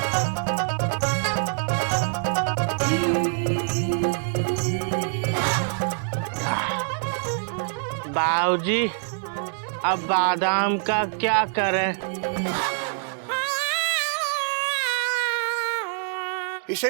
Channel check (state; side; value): silent; left; 62 dB below the other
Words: बाबूजी अब बादाम का क्या करें? इसे